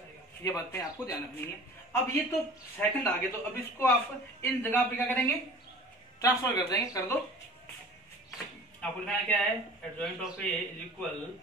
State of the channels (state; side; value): normal; both; correlation 0.43